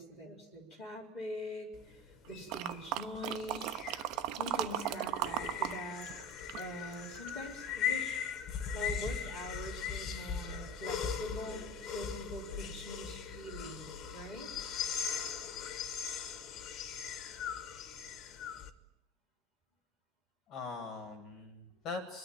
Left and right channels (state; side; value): normal; both; correlation 0.33